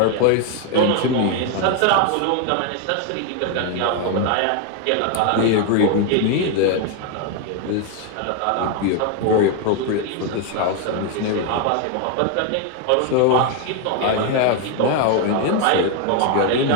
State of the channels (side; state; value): both; different; correlation 0.01